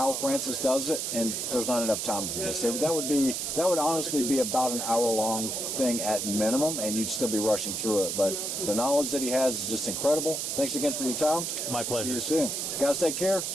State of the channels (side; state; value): right; noise; hiss, 2 dB below the sound